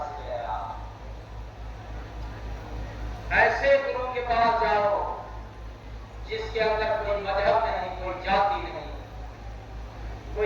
गया। ऐसे गुरु के पास जाओ जिसके अंदर कोई मजहब नहीं, कोई जाति नहीं,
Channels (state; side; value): identical; both; correlation 1.00